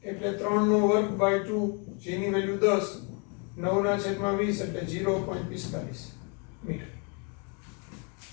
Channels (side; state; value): right; quieter; 34.8 dB